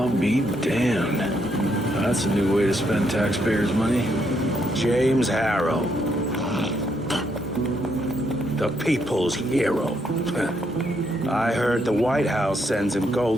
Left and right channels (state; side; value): normal; both; correlation 0.75